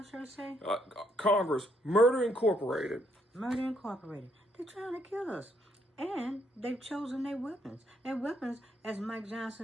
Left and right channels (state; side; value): normal; both; correlation 0.72